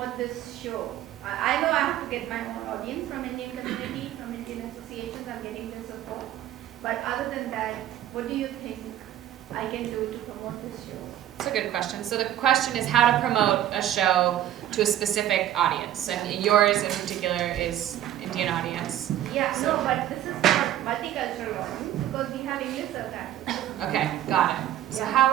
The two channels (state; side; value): quieter; left; 12.1 dB